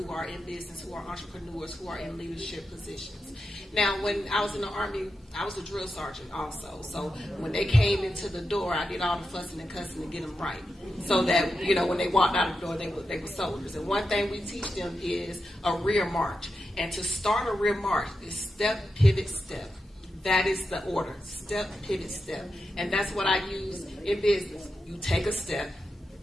are in business, who are entrepreneurs, who are in leadership positions. Now, when I was in the Army, I was a drill sergeant also. So when they came into the door, I did all the fussing and cussing to get them right. So that, you know, when they walked out the door, they were soldiers. And one thing we teach them is a rear march. And to start a rear march is step, pivot, step. That is the order. Step, pivot, step. And that's what I use in business. You take a step,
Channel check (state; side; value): normal; both; correlation 0.89